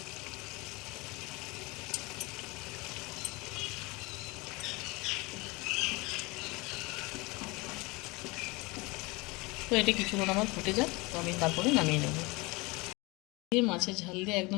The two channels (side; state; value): right; quieter; 24.8 dB